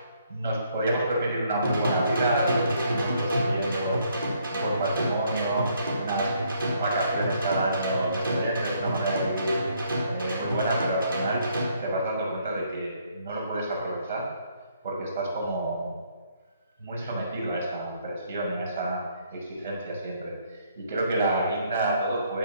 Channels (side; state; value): both; inverted; correlation -0.69